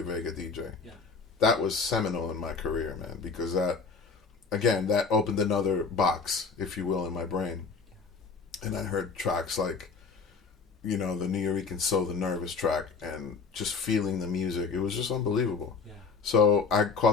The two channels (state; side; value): quieter; right; 4.9 dB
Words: Vega DJ. Yeah. That was seminal in my career, man, because that opened another box, if you will, in my brain. And I heard tracks like, the Nuyorican Soul, the Nervous track, and just feeling the music. It was just unbelievable. Yeah. So I